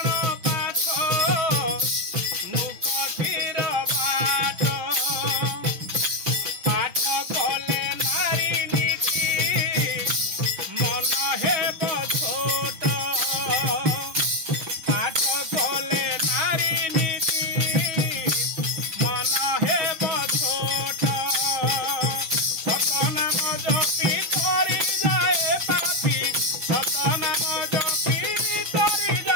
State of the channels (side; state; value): left; late; 6.2 ms